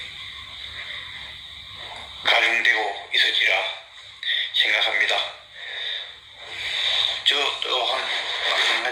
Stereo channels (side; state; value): both; identical; correlation 1.00